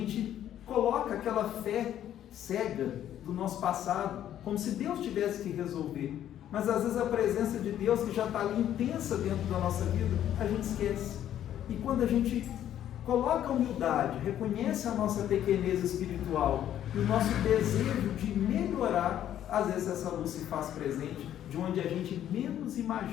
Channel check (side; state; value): right; quieter; 11.1 dB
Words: coloca aquela fé cega do nosso passado, como se Deus tivesse que resolver. Mas às vezes a presença de Deus, que já está ali intensa dentro da nossa vida, a gente esquece. E quando a gente coloca a humildade, reconhece a nossa pequenez espiritual e o nosso desejo de melhorar, às vezes essa luz se faz presente de onde a gente menos